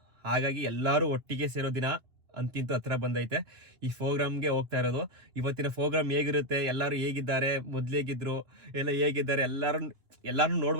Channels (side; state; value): left; late; 3.1 ms